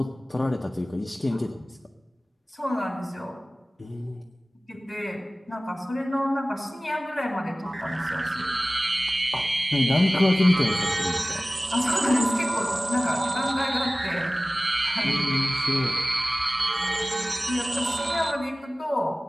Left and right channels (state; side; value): normal; both; correlation 0.97